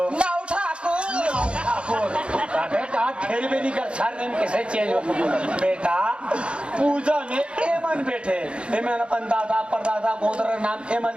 नाउ ठाकुर। अबे का खेल भी नहीं कर सरनेम कैसे चेंज हो बेटा। पूजा में एमन बैठे एमन अपन दादा परदादा गोत्र का नाम एमन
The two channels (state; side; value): late; left; 0.057 ms